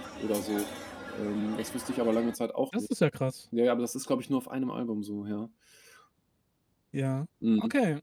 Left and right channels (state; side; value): identical; both; correlation 1.00